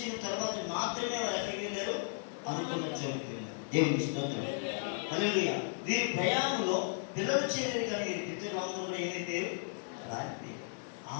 తర్వాత మాత్రమే వారు ఎక్కడికి వెళ్ళారు? అనుకున్న చోటుకి వెళ్ళారు. దేవునికి స్తోత్రం. హల్లెలూయా. వీరి ప్రయాణంలో పిల్లలు చేయలేదు, కానీ వీరి పితరులందరూ కూడా ఏమైపోయారు? రాలిపోయారు.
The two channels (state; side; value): silent; right; 54 dB below the other